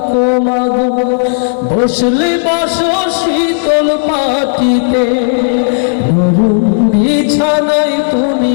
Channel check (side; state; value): right; silent; digital silence